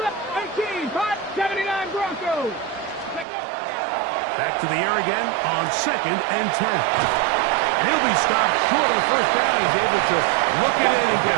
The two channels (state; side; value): drops out; left; at 3.2 s